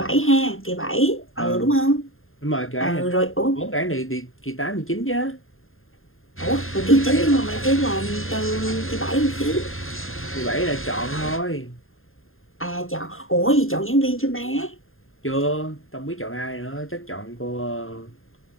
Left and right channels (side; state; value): right; late; 0.60 ms